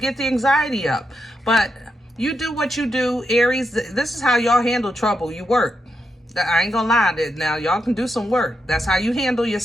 the anxiety up, but you do what you do, Aries. This is how y'all handle trouble. You work. I ain't gonna lie, now y'all can do some work. That's how you handle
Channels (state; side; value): normal; both; correlation 0.84